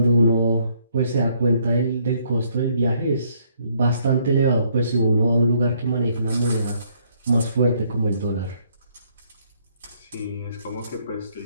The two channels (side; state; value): both; inverted; correlation -0.68